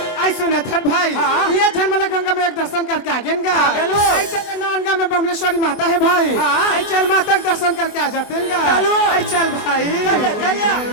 आई सुना थर भाई हाँ। ये झलमला गंगा में एक दर्शन करके आ गए गा गेलो। आई चल नानगा में बमलेश्वरी माता है भाई हाँ। आई चल माता का दर्शन करके आ जाते हैं गा चलो। आई चल भाई चलिए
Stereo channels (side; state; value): right; late; 24 ms